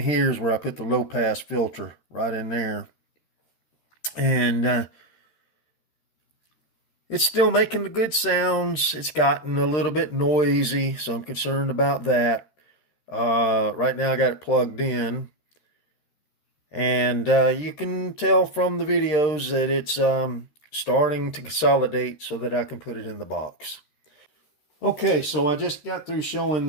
is where I put the low pass filter, right in there. And it's still making the good sounds. It's gotten a little bit noisy, so I'm concerned about that. Right now I got it plugged in, and you can tell from the videos that it's starting to consolidate so that I can put it in the box. Okay, so I just got through showing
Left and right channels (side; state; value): right; late; 13 ms